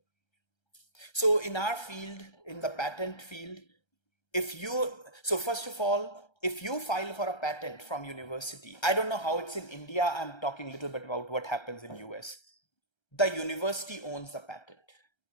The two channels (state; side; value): late; right; 1.3 ms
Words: So in our field, in the patent field, first of all, if you file for a patent from university, I don't know how it's in India, I'm talking a little bit about what happens in US. The university owns the patent.